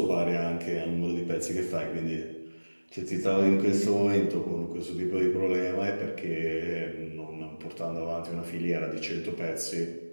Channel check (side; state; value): both; inverted; correlation -1.00